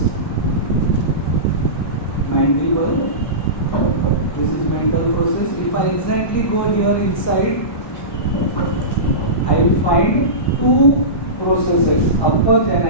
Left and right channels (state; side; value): late; right; 1.1 ms